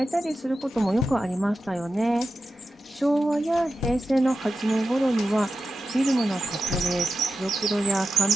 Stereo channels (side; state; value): both; normal; correlation 0.91